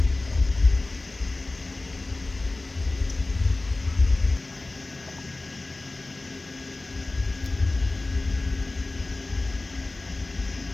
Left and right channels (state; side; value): quieter; right; 3.1 dB